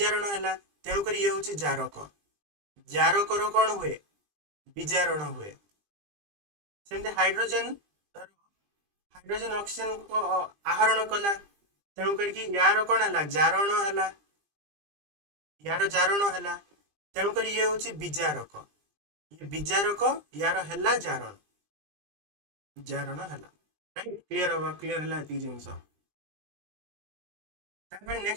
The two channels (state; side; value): late; left; 20 ms